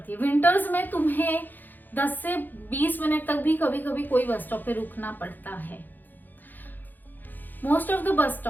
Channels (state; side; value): late; right; 0.087 ms